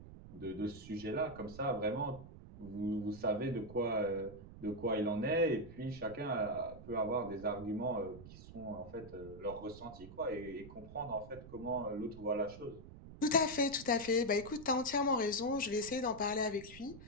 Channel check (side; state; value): right; noise; rumble, 15 dB below the sound